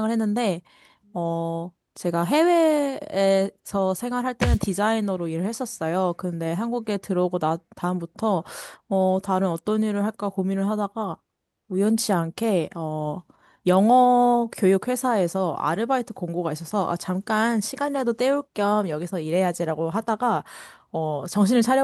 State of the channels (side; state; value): both; identical; correlation 1.00